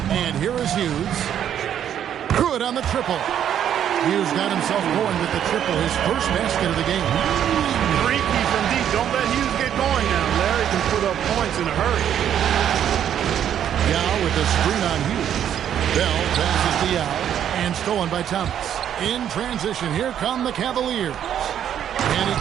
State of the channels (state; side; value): quieter; left; 9.8 dB